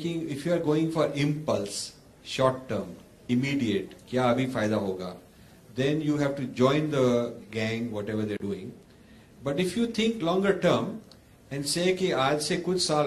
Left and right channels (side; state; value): both; identical; correlation 1.00